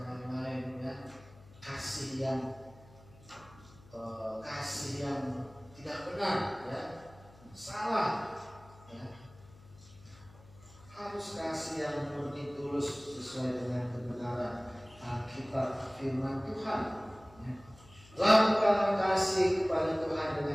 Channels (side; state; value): left; noise; hum, 23 dB below the sound